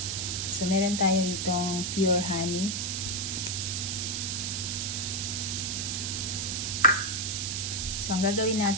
So meron tayo ditong pure honey. So ang gagawin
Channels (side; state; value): right; noise; hiss, 1 dB below the sound